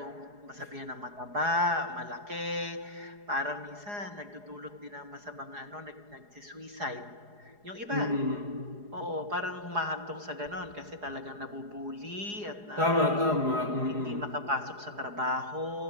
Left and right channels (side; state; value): left; late; 4.8 ms